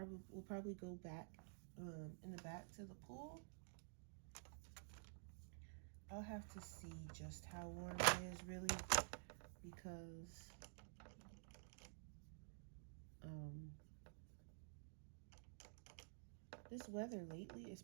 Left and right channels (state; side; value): silent; left; digital silence